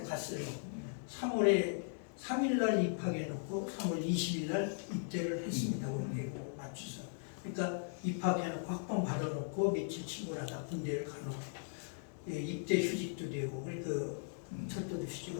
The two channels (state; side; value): silent; right; digital silence